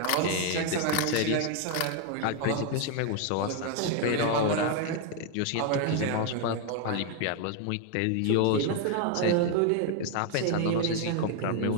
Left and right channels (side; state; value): both; different; correlation 0.01